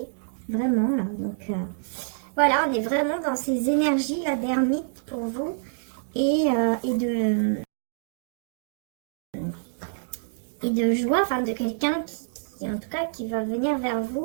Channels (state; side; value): silent; left; digital silence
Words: Vraiment, là. Donc, voilà, on est vraiment dans ces énergies, là, d'ermite pour vous. Et de joie, enfin, de quelqu'un qui, en tout cas, qui va venir vers